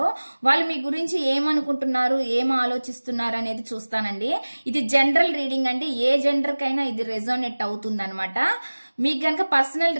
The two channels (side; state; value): both; inverted; correlation -1.00